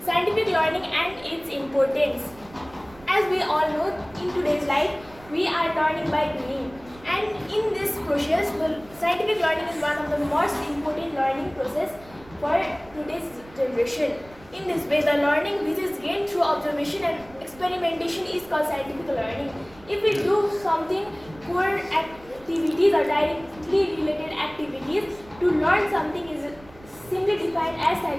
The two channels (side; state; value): right; noise; rumble, 23 dB below the sound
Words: and its importance. As we all know, in today's life, we are learning by doing. And in this process, scientific learning is one of the most important learning process for today's generation. In this way, the learning which is gained through observation and experimentation is called scientific learning. If we do something core activities or directly related activities, to learn something is simply defined as